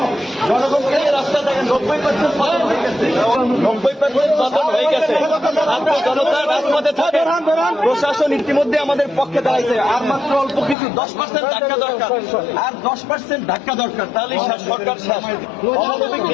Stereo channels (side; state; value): right; drops out; at 10.8 s